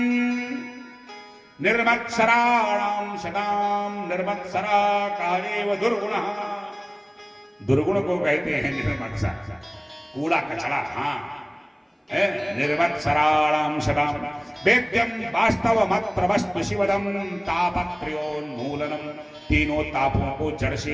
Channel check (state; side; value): identical; both; correlation 1.00